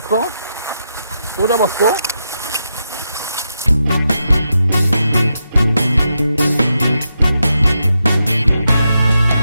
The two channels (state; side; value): inverted; both; correlation -0.85